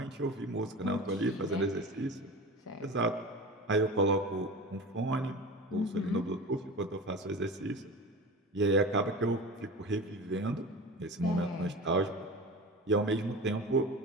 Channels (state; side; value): normal; both; correlation 0.32